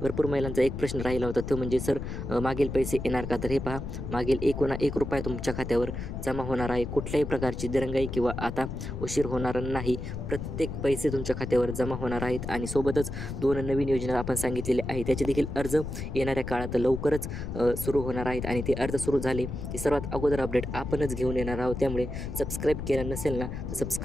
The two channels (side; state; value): left; noise; rumble, 6 dB below the sound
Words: महिलांचा एक प्रश्न राहिला होता, तो म्हणजे सर मागील पैसे येणार का? तर हे पहा, मागील 1 रुपया तुमच्या खात्यावर जमा होणार आहे. कुठल्याही प्रकारची दिरंगाई किंवा आता उशीर होणार नाही. प्रत्येक पैसे तुमच्या खात्यावर जमा होणार आहेत आणि सोबतच 2 नवीन योजना आपण सांगितलेले आहे, त्याचे देखील अर्ज येणाऱ्या काळात लवकरच सुरू होणार आहेत आणि ते अर्ज सुरू झाले की सर्वात अगोदर अपडेट आपणच घेऊन येणार आहोत. त्यामुळे सबस्क्राईब केलं नसेल ना तर